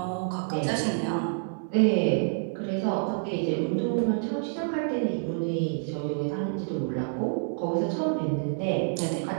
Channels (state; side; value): silent; left; digital silence